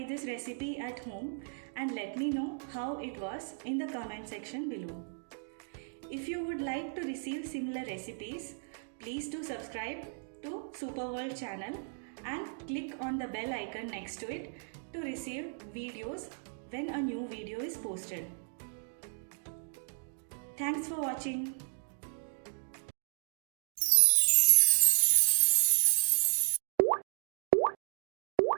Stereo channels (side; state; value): left; silent; digital silence